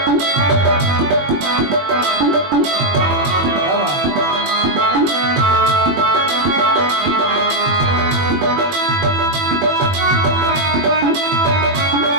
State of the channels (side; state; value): left; late; 21 ms